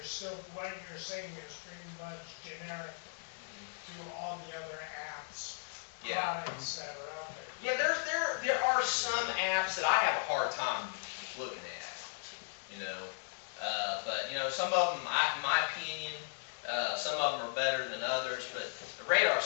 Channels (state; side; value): silent; right; digital silence